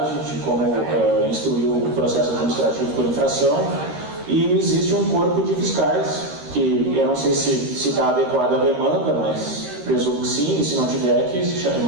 de como instruir o processo administrativo por infração, e existe um corpo de fiscais, que eu não sei se está adequado à demanda, mas presumo que sim, e se não tiver, que se chame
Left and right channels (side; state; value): left; late; 13 ms